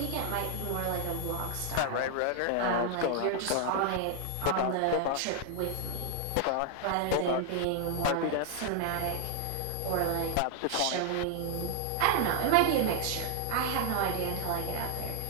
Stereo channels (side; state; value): both; different; correlation 0.00